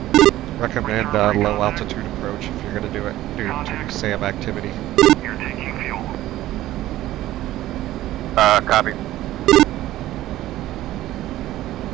Recommend low altitude approach if you're going to do it due to SAM activity. You're taking fuel. Copy.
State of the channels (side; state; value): left; quieter; 14.9 dB